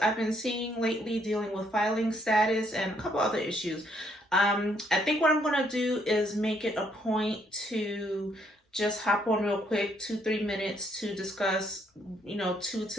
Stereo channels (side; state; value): both; normal; correlation 0.70